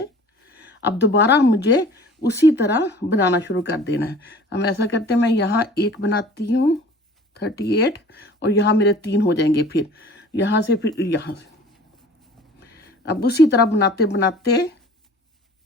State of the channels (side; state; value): both; normal; correlation 0.47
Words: अब दोबारा मुझे उसी तरह बनाना शुरू कर देना है। हम ऐसा करते हैं, मैं यहाँ 1 बनाती हूँ 38 और यहाँ मेरे 3 हो जाएंगे। फिर यहाँ से फिर यहाँ से अब उसी तरह बनाते बनाते